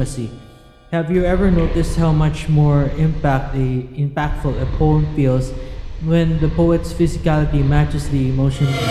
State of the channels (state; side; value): identical; both; correlation 1.00